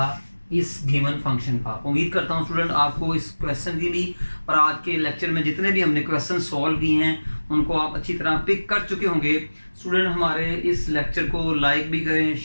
इस गिवन फंक्शन का। उम्मीद करता हूँ स्टूडेंट आपको इस क्वेश्चन की भी और आज के लेक्चर में जितने भी हमने क्वेश्चन सॉल्व किए हैं उनको आप अच्छी तरह पिक कर चुके होंगे। स्टूडेंट हमारे इस लेक्चर को लाइक भी करें,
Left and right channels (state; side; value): inverted; both; correlation -1.00